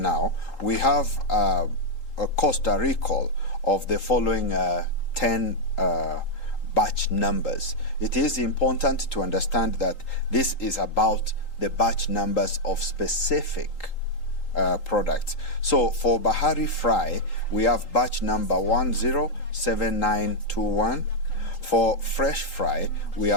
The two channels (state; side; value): late; right; 3.8 ms